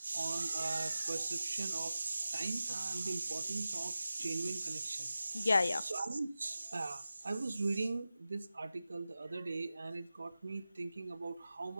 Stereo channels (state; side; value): inverted; both; correlation -0.94